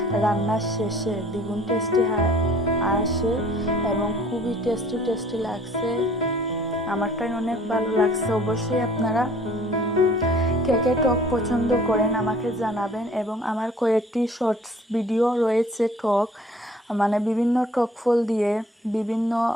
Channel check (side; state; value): both; normal; correlation 0.53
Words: রান্নার শেষে দ্বিগুণ টেস্টি আসে এবং খুবই টেস্টি লাগছে। আমারটাই অনেক ভালো লাগছে। অবশ্যই আপনারা কে টক পছন্দ করেন আমাকে জানাবেন। এবং আমার কয়েকটি শর্টস ভিডিও রয়েছে টক, মানে বিভিন্ন টক ফল দিয়ে বিভিন্ন